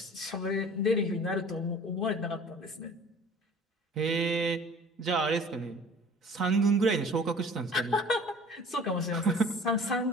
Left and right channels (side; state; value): both; normal; correlation 0.47